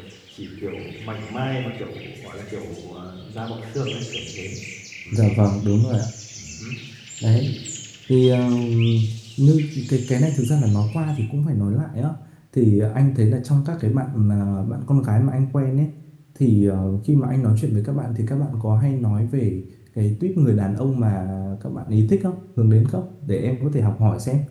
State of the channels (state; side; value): identical; both; correlation 1.00